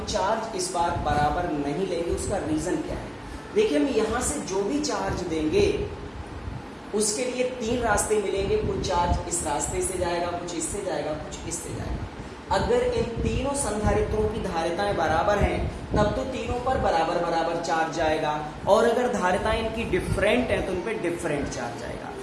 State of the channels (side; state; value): both; identical; correlation 1.00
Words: चार्ज इस बार बराबर नहीं लेंगे। उसका रीजन क्या है, देखिए हम यहाँ से जो भी चार्ज देंगे उसके लिए 3 रास्ते मिलेंगे। कुछ चार्ज इस रास्ते से जाएगा, कुछ इससे जाएगा, कुछ इससे जाएगा। अगर इन तीनों संधारित्रों की धारिताएं बराबर हैं तब तो तीनों पर बराबर चार्ज जाएगा और अगर धारिताएं इनकी डिफरेंट हैं तो उन पर डिफरेंट चार्ज जाएगा।